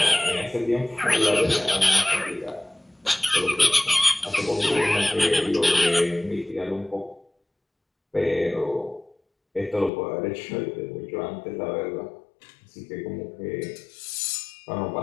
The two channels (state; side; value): drops out; right; at 9.9 s